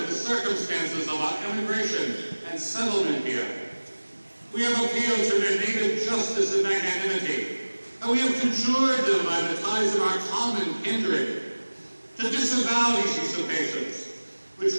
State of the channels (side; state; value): both; inverted; correlation -1.00